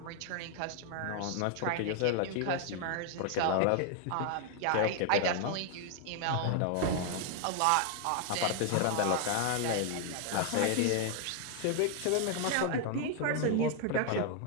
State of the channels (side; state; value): both; different; correlation 0.00